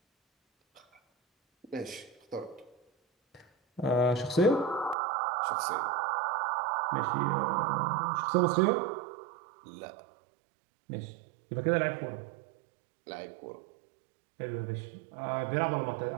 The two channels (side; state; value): left; drops out; at 5.0 s